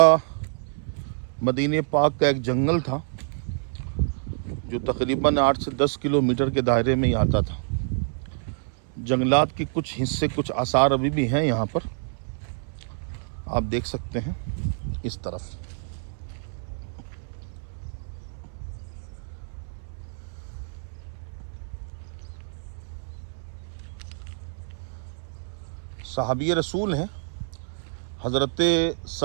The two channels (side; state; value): left; silent; 60 dB below the other